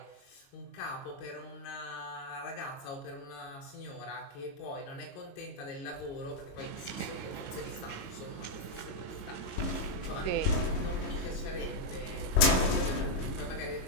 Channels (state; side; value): late; right; 22 ms